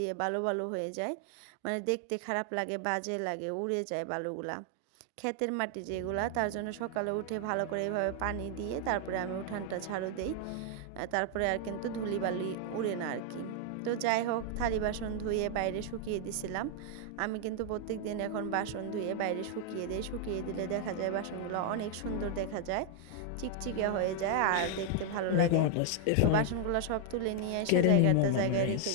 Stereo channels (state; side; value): different; both; correlation 0.00